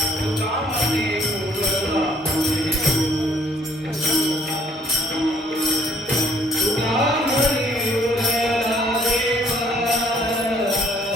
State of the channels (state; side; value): normal; both; correlation 0.63